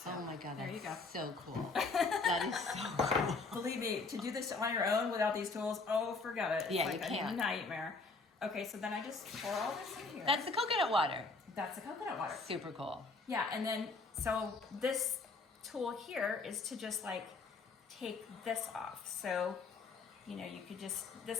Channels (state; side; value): quieter; right; 3.9 dB